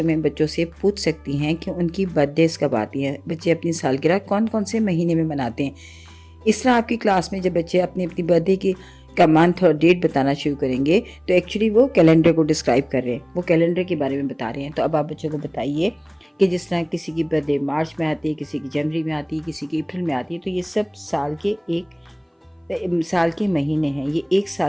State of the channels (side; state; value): both; identical; correlation 1.00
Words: में बच्चों से पूछ सकती हैं कि उनकी बर्थडेज कब आती हैं, बच्चे अपनी सालगिरह कौन कौन से महीने में मनाते हैं। इस तरह आपकी क्लास में जब बच्चे अपनी अपनी बर्थडे की का मंथ और डेट बताना शुरू करेंगे, तो एक्चुअली वो कैलेंडर को डिस्क्राइब कर रहे हैं, वो कैलेंडर के बारे में बता रहे हैं। तो अब आप बच्चों को बताइए कि जिस तरह किसी की बर्थडे मार्च में आती है, किसी की जनवरी में आती है, किसी की अप्रैल में आती है, तो ये सब साल के महीने हैं। ये एक